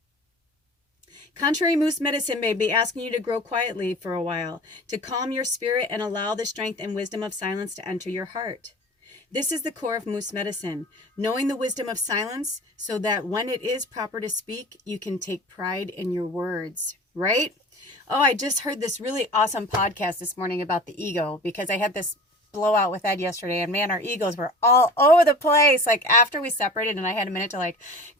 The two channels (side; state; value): both; normal; correlation 0.39